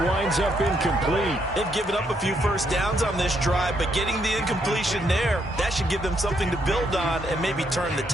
winds up incomplete. They've given up a few first downs on this drive, but getting the incompletion there, that should give them something to build on and maybe turn the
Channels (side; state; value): both; normal; correlation 0.75